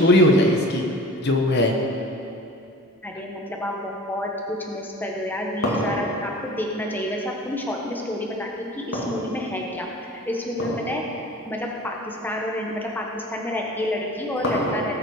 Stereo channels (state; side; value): normal; both; correlation 0.42